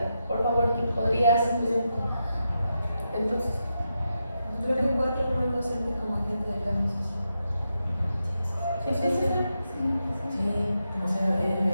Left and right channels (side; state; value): both; inverted; correlation -0.86